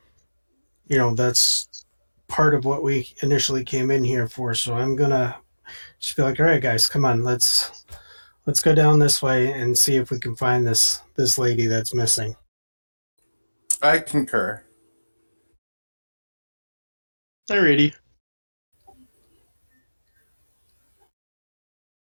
That's part of what we initially came in here for. So I'm gonna just be like, all right, guys, come on, let's go down this way and see if we can find this lady that's missing. I concur. Alrighty.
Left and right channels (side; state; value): both; inverted; correlation -1.00